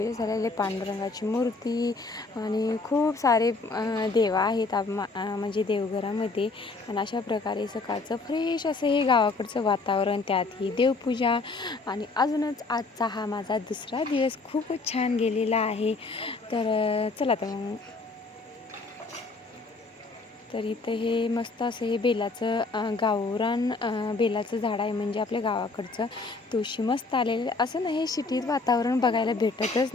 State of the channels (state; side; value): quieter; right; 3.8 dB